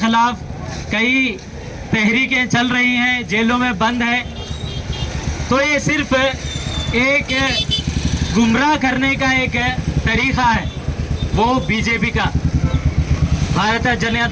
कई तहरीकें चल रही हैं, जेलों में बंद है। तो ये सिर्फ एक गुमराह करने का एक तरीक़ा है, वो BJP का, भारतीय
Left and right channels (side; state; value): both; identical; correlation 1.00